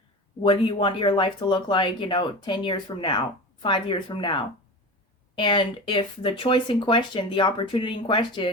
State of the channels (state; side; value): normal; both; correlation 0.29